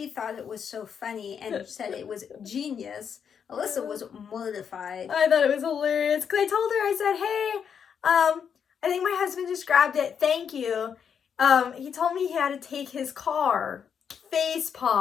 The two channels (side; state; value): right; quieter; 7.4 dB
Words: thought it was so funny and said it was genius. Alyssa was mortified. I thought it was hilarious because I told her, I said, hey, I think my husband just grabbed it. Thank you. He told me he had to take his car. Face